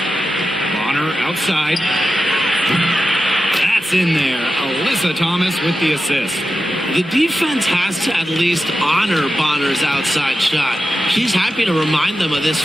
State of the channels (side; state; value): both; normal; correlation 0.91